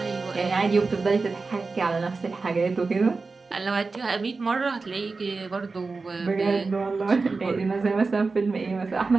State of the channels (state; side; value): quieter; left; 4.1 dB